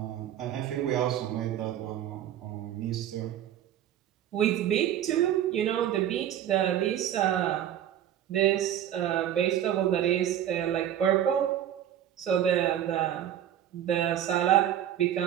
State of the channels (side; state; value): left; quieter; 10.9 dB